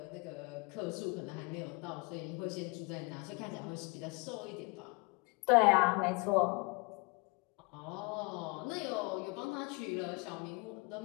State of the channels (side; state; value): right; quieter; 27.3 dB